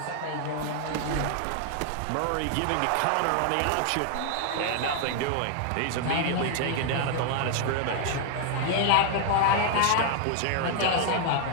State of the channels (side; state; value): both; different; correlation 0.00